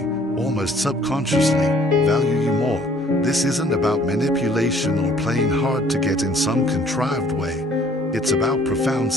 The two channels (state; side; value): normal; both; correlation 0.57